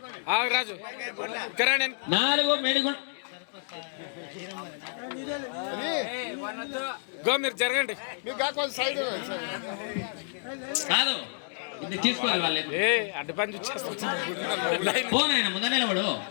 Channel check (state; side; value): silent; right; digital silence